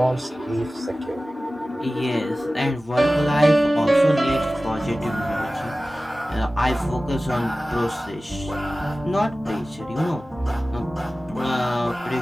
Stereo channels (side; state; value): both; normal; correlation 0.96